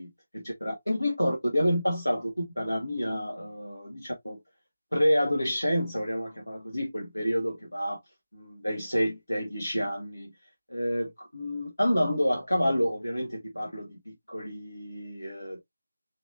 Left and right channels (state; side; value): inverted; both; correlation -0.95